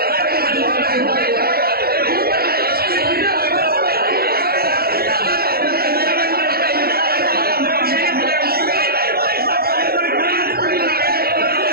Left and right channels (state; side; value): late; left; 0.44 ms